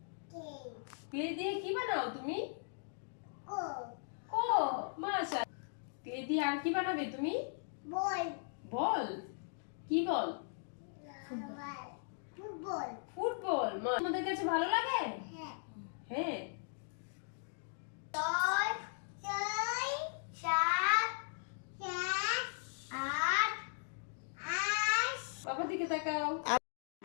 ক্লে দিয়ে কি বানাও তুমি? ও মাশাআল্লাহ। ক্লে দিয়ে আর কি বানাবে তুমি? বল। বল। কি বল? ফুটবল। ফুটবল। তোমাদের কাছে ভালো লাগে? হ্যাঁ। হ্যাঁ। 6 6 7 8 8 বাবার দিকে তাকাও।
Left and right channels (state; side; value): silent; right; digital silence